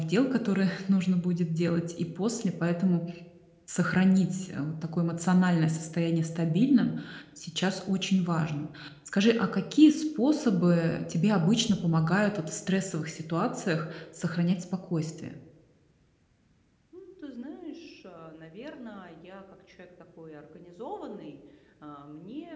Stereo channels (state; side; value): identical; both; correlation 1.00